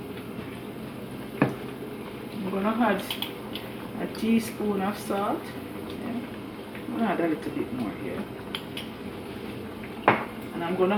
I'm gonna add a teaspoon of salt. Yeah. I'm gonna add a little bit more here. And I'm gonna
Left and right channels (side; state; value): both; identical; correlation 1.00